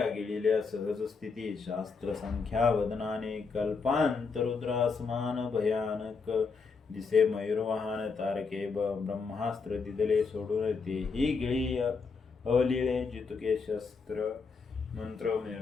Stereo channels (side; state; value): right; quieter; 4.9 dB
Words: गिळिल्या सहज स्थिती. शास्त्र संख्या वदनाने. कल्पांतरुद्रासमान भयानक दिसे मयूरवाहन. तारके ब्रह्मास्त्र दिदले सोडून. तेही गिळी अवलिळे जितुके शस्त्र मंत्र